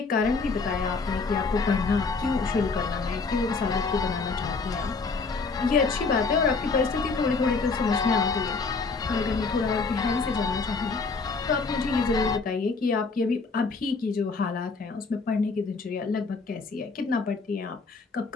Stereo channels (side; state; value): right; quieter; 4.3 dB